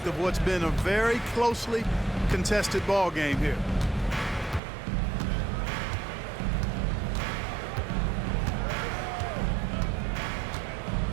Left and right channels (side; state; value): left; drops out; at 4.6 s